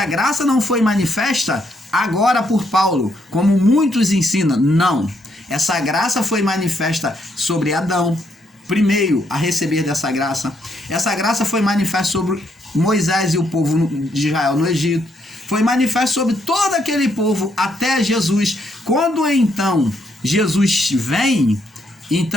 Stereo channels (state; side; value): normal; both; correlation 0.74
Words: graça não foi manifesta agora por Paulo, como muitos ensinam. Não. Essa graça foi manifesta sobre Adão, primeiro a receber dessa graça. Essa graça foi manifesta sobre Moisés e o povo de Israel no Egito. Foi manifesta sobre todo aquele povo até Jesus. Quando então Jesus vem,